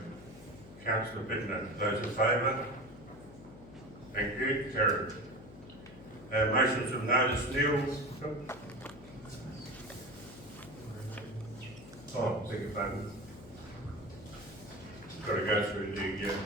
Councillor Bittner. Those in favour? Thank you. Carried. Motions of notice, Neil. Oh, beg your pardon. Got to go through the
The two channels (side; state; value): left; noise; hum, 17 dB below the sound